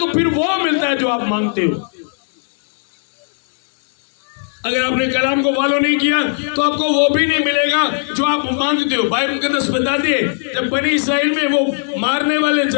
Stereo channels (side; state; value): right; silent; 68 dB below the other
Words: फिर वो मिलता है जो आप मांगते हो। अगर आपने कलाम को फॉलो नहीं किया तो आपको वो भी नहीं मिलेगा जो आप मांगते हो। बाइबल मुकद्दस बताती है, जब बनी इस्राएल में वो मारने वाले,